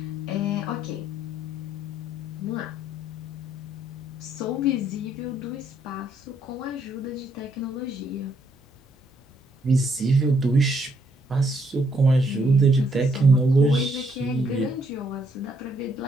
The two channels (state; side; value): normal; both; correlation 0.71